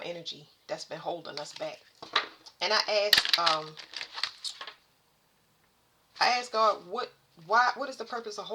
energy that's been holding us back. And I asked God, what is the purpose of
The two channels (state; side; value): identical; both; correlation 1.00